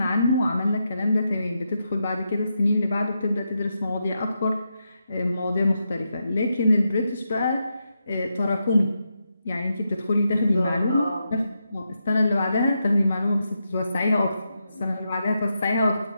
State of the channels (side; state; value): both; inverted; correlation -0.85